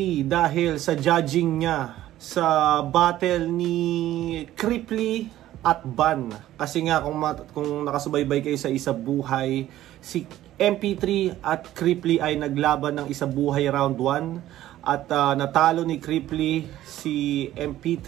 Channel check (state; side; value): quieter; left; 13.9 dB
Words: dahil sa judging niya sa battle ni Cripply at Ban. Kasi nga kung nakasubaybay kayo sa Isa Buhay, si MP3 at Cripply ay naglaban ng Isa Buhay round 1 at natalo ni Cripply si